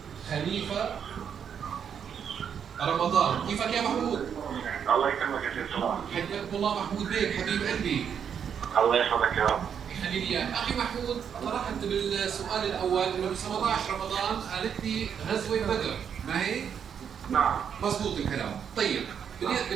خليفة رمضان. كيفك يا محمود؟ الله يكرمك يا سيد صلاح. حياكم الله محمود بيك حبيب قلبي. الله يحفظك يا رب. يخلي لي اياك. اخي محمود، طرحت بالسؤال الاول انه ب 17 رمضان قالت لي غزوة بدر، ما هي؟ نعم. مضبوط الكلام. طيب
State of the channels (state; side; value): quieter; left; 7.8 dB